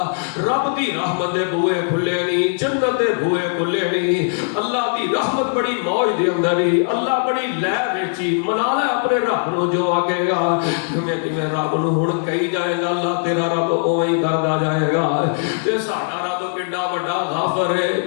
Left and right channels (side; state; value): right; silent; digital silence